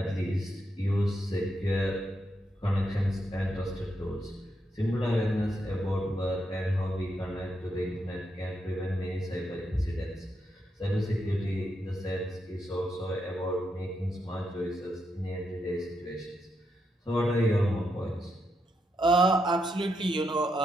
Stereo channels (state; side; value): normal; both; correlation 0.81